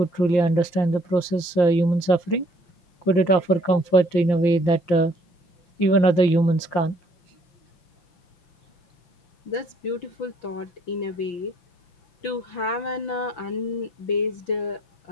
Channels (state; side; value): late; right; 5.8 ms